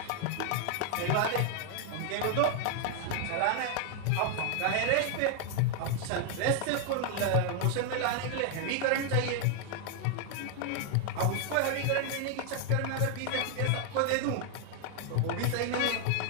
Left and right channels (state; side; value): different; both; correlation 0.00